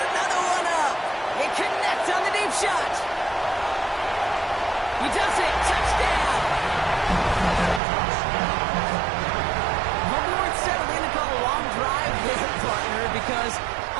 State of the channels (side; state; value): left; drops out; at 7.8 s